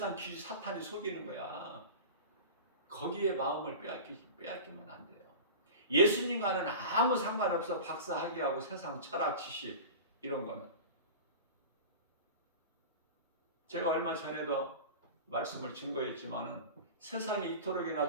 지식, 사탄이 속이는 거야. 거기에 마음을 빼앗기면 안 돼요. 예수님과는 아무 상관없어. 박사학위하고 세상 철학 지식 이런 거는. 제가 얼마 전에도 말씀을 증거했지만은 세상이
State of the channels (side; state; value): both; inverted; correlation -0.32